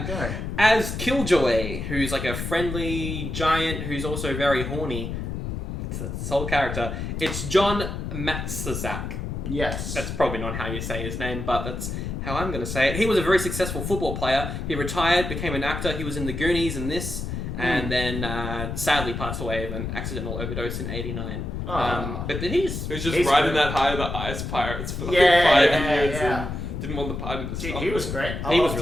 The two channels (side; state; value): left; noise; rumble, 5 dB below the sound